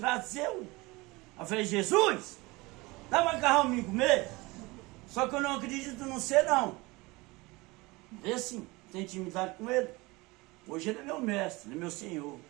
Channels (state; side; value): quieter; left; 23.1 dB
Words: Eu falei, Jesus, dá macarrão pra mim comer? Só que eu não acredito no ser, não. É assim, tem intimidade com ele. Hoje ele é meu mestre, ele é meu senhor.